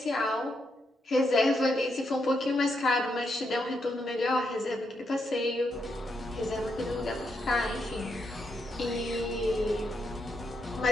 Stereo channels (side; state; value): both; normal; correlation 0.81